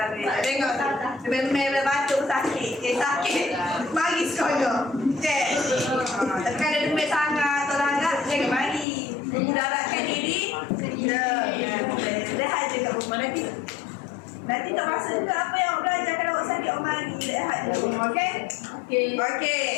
Tengok. Memang batuk sakit. Sakit. Mari sekolah. Cek. Tapi ada demam sangat atau langgar, jangan mari. Mudaratkan diri. Rehat je kat rumah nanti. Nanti tak rasa juga apa yang awak belajar. Kalau awak sakit, awak mari rehat je rumah. Okey?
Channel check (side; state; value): right; drops out; at 8.8 s